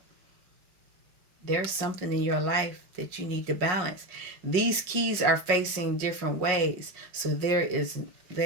There's something in your life that you need to balance. These keys are facing different ways. So there's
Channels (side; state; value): left; late; 5.5 ms